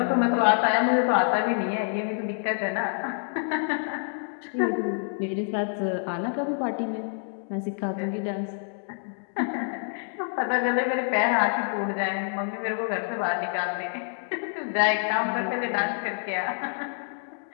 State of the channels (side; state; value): right; silent; 60 dB below the other